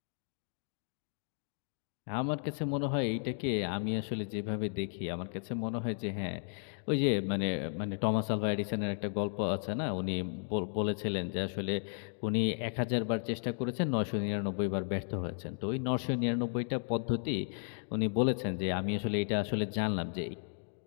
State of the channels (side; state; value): right; silent; 55 dB below the other